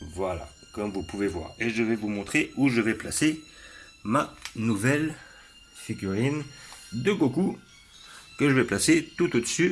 Voilà, comme vous pouvez voir. Et je vais vous montrer où je vais placer ma nouvelle figurine de Goku, que je vais placer tout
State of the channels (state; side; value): identical; both; correlation 1.00